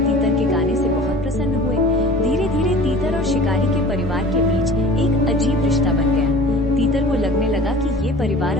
के गाने से बहुत प्रसन्न हुए। धीरे धीरे तीतर और शिकारी के परिवार के बीच एक अजीब रिश्ता बन गया। तीतर को लगने लगा कि ये परिवार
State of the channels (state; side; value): normal; both; correlation 0.43